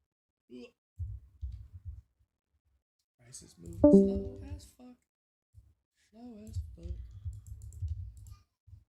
Lucid. Price is moving slow as fuck. Slow as fuck.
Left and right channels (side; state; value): both; identical; correlation 1.00